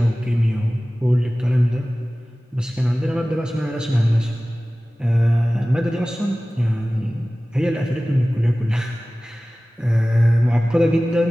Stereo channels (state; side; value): normal; both; correlation 0.97